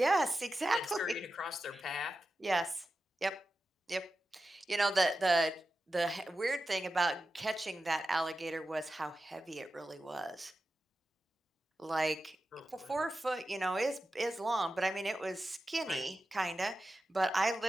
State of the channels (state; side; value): normal; both; correlation 0.92